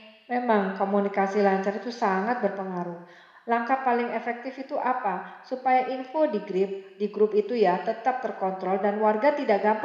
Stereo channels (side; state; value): both; identical; correlation 1.00